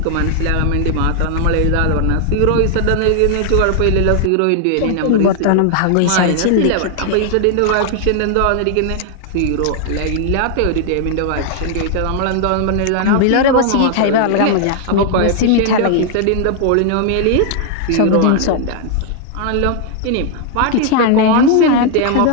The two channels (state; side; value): different; both; correlation 0.00